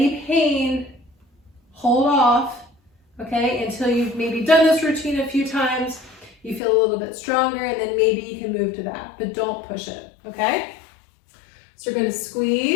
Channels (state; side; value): drops out; right; at 6.6 s